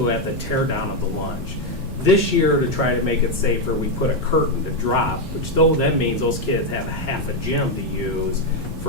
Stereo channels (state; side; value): noise; left; hum, 17 dB below the sound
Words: at the tear down of the lunch. This year, to try to make it safer, we put a curtain to drop, which though that means those kids have half a gym to use